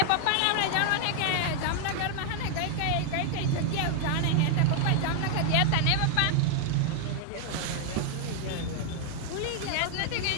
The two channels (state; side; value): different; both; correlation 0.00